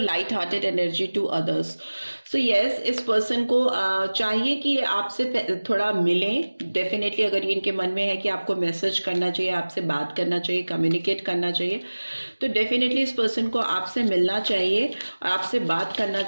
hearted energy to others. So yes, इस पर्सन को चाहिए कि आपसे थोड़ा मिलें। डेफिनेटली अगर ये इनके मन में है कि आपको मैसेज करना चाहिए, आपसे बात करना चाहिए, कम्युनिकेट करना चाहिए, तो डेफिनेटली इस पर्सन को आपसे मिलना चाहिए और आपसे बात करना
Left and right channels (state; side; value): inverted; both; correlation -1.00